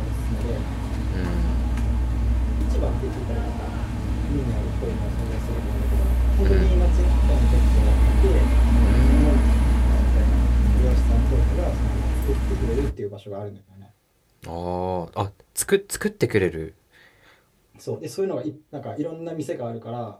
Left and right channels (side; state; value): both; identical; correlation 1.00